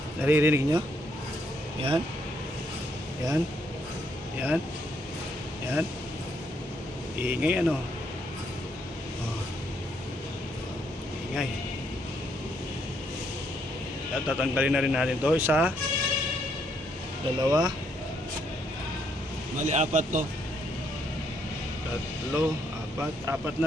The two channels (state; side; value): normal; both; correlation 0.73